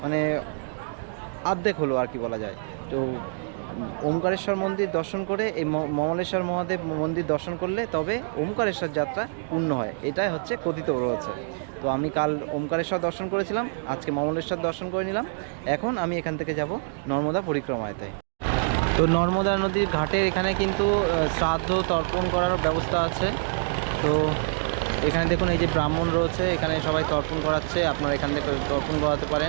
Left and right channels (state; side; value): silent; left; digital silence